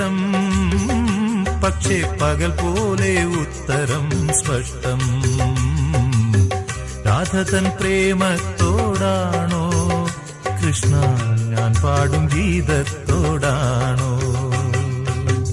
പക്ഷേ പകൽ പോലെ ഉത്തരം സ്പഷ്ടം. രാധതൻ പ്രേമത്തോടാണോ കൃഷ്ണ ഞാൻ പാടും ഗീതത്തോടാണോ?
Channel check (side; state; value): both; identical; correlation 1.00